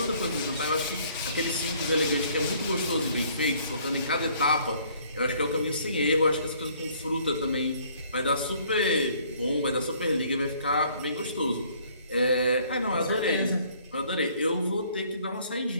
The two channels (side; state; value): both; inverted; correlation -0.60